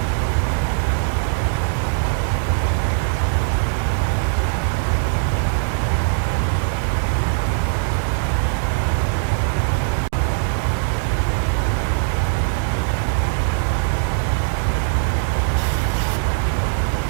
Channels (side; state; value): left; silent; digital silence